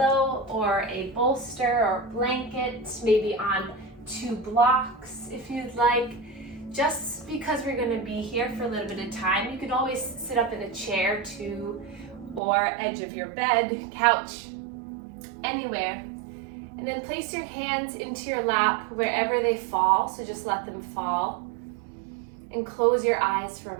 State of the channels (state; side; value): drops out; left; at 12.4 s